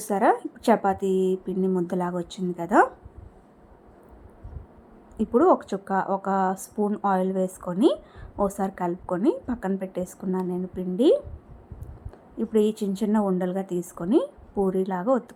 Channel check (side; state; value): both; identical; correlation 1.00